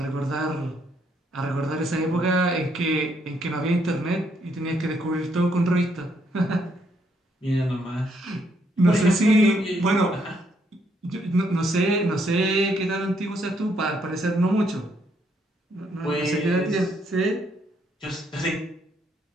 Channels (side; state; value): both; normal; correlation 0.73